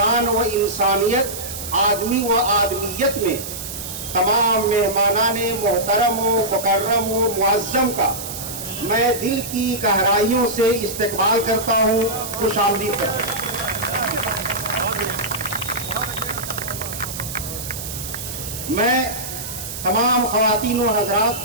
و انسانیت, آدمی و آدمیت میں تمام مہمانان محترم و مکرم و معظم کا میں دل کی گہرائیوں سے استقبال کرتا ہوں, خوش آمدید کرتا ہوں. میں تمام خواتین و حضرات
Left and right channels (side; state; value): right; noise; hiss, 8 dB below the sound